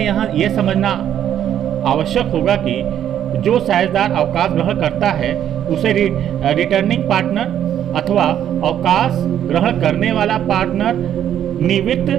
यह समझना आवश्यक होगा कि जो साझेदार अवकाश ग्रहण करता है उसे रिटर्निंग पार्टनर अथवा अवकाश ग्रहण करने वाला पार्टनर निवृत्त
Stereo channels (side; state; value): left; quieter; 10.3 dB